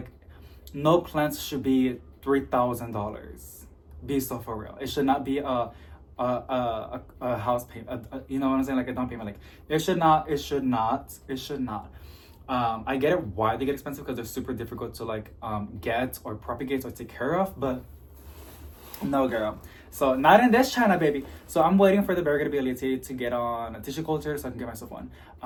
no plants should be $3,000. Be so for real. It should not be a house payment. You know what I'm saying? Like a down payment. Like, it should not. I get it why they get expensive, because they're super difficult to like get or propagate or take care of, but no, girl. So not in this China, baby. So I'm waiting for the variegated Biliaceae to get on a tissue culture so I can get myself one.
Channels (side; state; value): both; identical; correlation 1.00